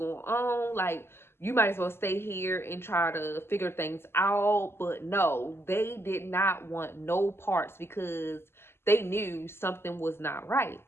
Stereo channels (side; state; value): right; late; 0.12 ms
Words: on. Like, you might as well stay here and try to figure things out. But no, they did not want no parts because they knew something was not right.